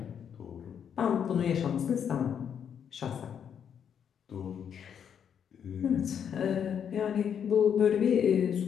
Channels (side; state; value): right; quieter; 8.1 dB